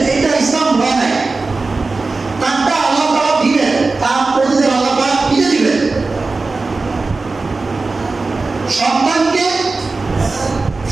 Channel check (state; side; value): quieter; left; 3.7 dB